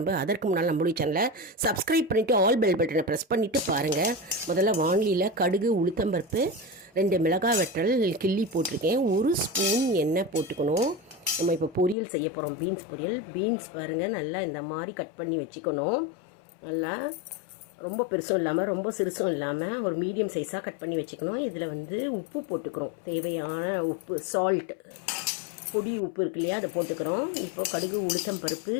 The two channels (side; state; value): right; drops out; at 12.0 s